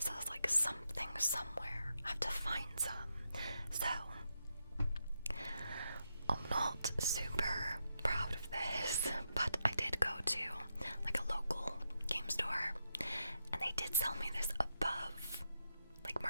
I was like, something somewhere, I have to find some. So I'm not super proud of this, but I did go to like a local game store, and they did sell me this above like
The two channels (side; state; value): both; inverted; correlation -0.84